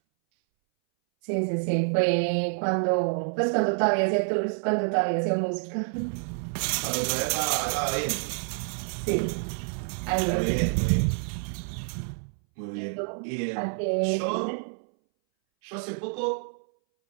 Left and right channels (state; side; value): silent; left; 60 dB below the other